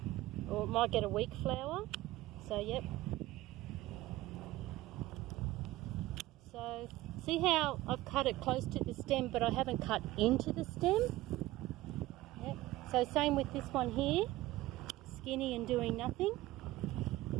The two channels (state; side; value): quieter; left; 17.1 dB